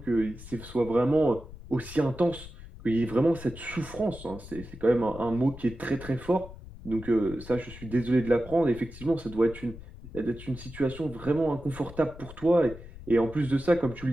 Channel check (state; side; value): noise; left; rumble, 15 dB below the sound